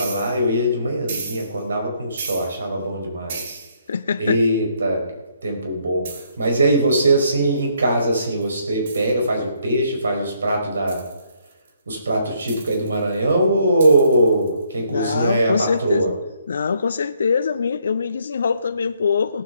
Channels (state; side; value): inverted; both; correlation -0.70